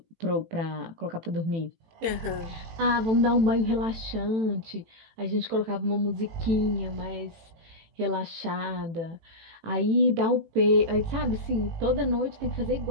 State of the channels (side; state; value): left; late; 18 ms